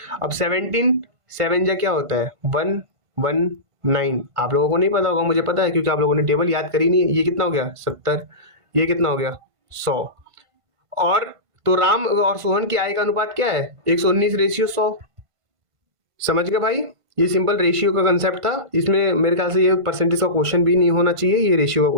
अब 17 7 जा क्या होता है? 119। आप लोगों को नहीं पता होगा, मुझे पता है, क्योंकि आप लोगों ने टेबल याद करी नहीं है। ये कितना हो गया? 70। ये कितना हो गया? 100। और तो राम और सोहन की आय का अनुपात क्या है? 119/100। समझ गए भाई? ये सिंपल रेशियो का कंसेप्ट था, इसमें मेरे ख्याल से ये परसेंटेज का क्वेश्चन भी नहीं होना चाहिए, ये रेशियो का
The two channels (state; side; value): late; left; 1.5 ms